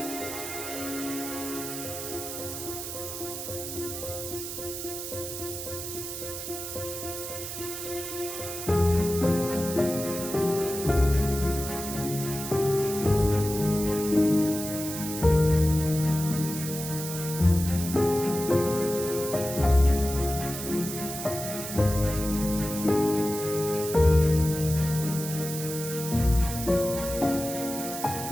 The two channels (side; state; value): right; noise; hiss, 7 dB below the sound